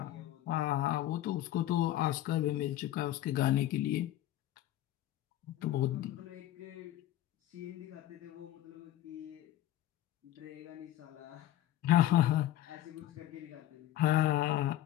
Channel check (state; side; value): quieter; right; 13.5 dB